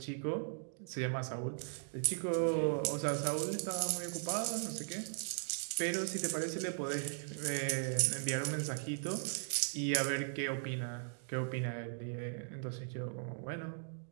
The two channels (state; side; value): silent; left; digital silence